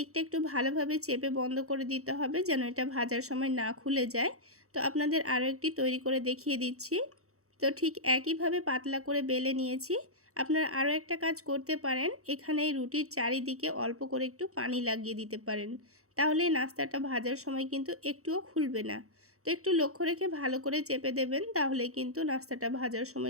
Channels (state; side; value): late; left; 0.64 ms